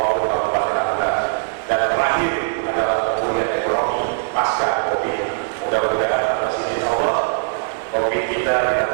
kabupaten Natuna. Dan terakhir adalah pemulihan ekonomi pasca COVID. Mudah-mudahan atas izin Allah, COVID kita di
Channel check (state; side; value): silent; left; digital silence